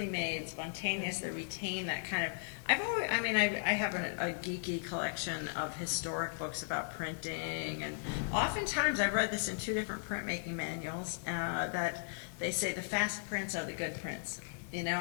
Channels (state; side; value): silent; right; digital silence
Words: made, spontaneous. They retain that kind of. I have a geeky collection of historic books about printing, and oftentimes I've read this in 2 different printmaking manuals that they say the fast prints are the good prints. You know,